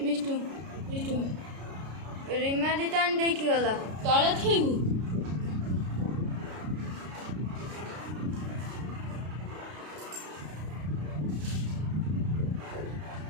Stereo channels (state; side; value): late; left; 33 ms